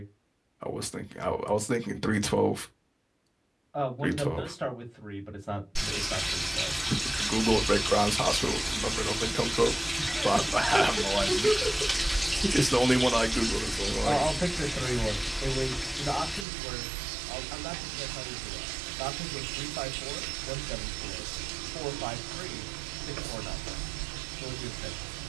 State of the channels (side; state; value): left; drops out; at 16.4 s